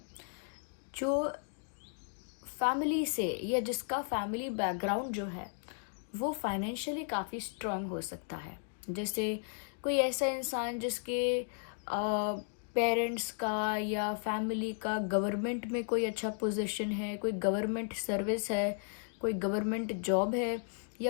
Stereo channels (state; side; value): silent; right; 55 dB below the other